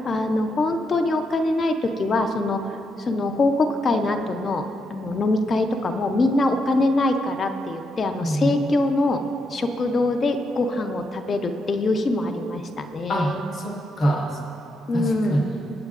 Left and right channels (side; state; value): both; normal; correlation 0.81